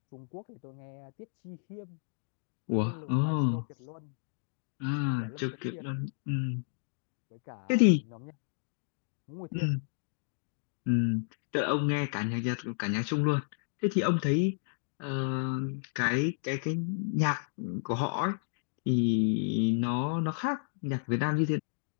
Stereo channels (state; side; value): silent; right; digital silence